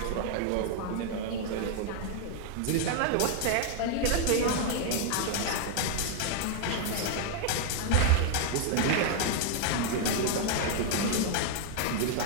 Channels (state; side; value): different; both; correlation 0.00